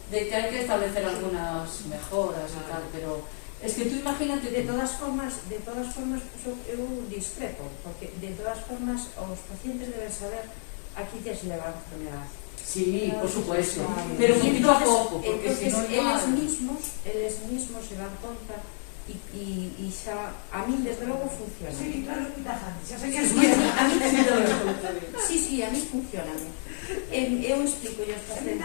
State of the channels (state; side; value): silent; right; 59 dB below the other